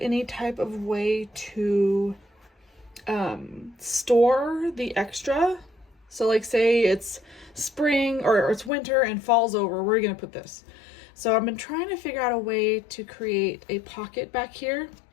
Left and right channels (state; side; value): drops out; right; at 8.7 s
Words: type of way to store the extra. So like say it's spring or it's winter and fall's over, where are you gonna put this? So I've been trying to figure out a way to create a pocket back here,